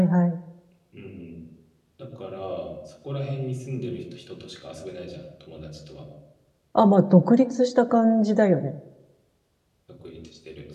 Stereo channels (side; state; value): both; identical; correlation 1.00